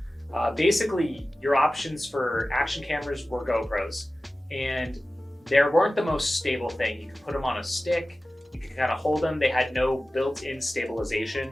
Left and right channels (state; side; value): normal; both; correlation 0.96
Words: basically your options for action cameras were GoPros, and they weren't the most stable thing. You could put them on a stick, you could kind of hold them. They had no built-in stabilization.